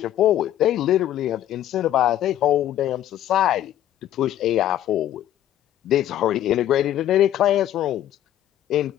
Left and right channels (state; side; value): quieter; right; 12.0 dB